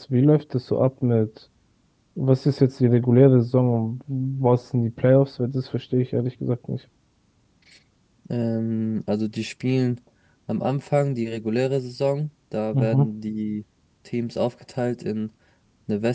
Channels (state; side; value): identical; both; correlation 1.00